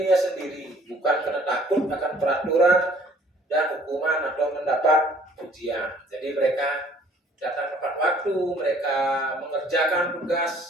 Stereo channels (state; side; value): normal; both; correlation 0.57